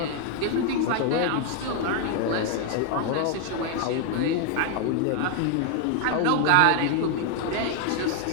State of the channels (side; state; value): both; different; correlation 0.00